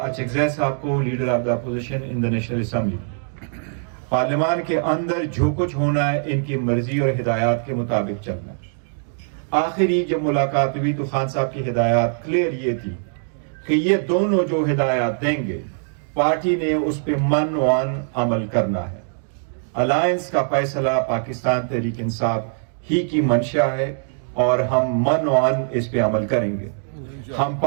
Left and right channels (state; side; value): silent; left; digital silence